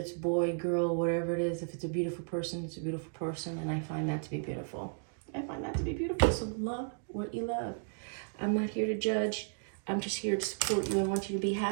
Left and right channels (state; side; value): silent; left; digital silence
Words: boy, girl, whatever it is. If it's a beautiful person, it's a beautiful person, and I find that to be beautiful. So love what you love. I'm not here to judge. I'm just here to support you. I want you to be